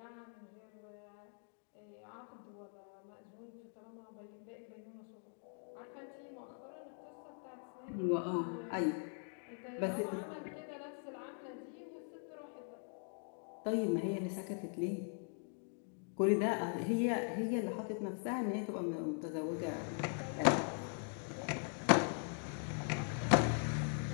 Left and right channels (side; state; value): right; silent; 50 dB below the other